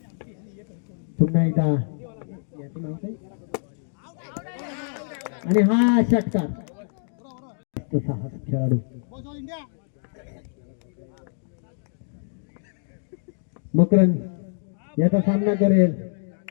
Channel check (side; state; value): right; silent; digital silence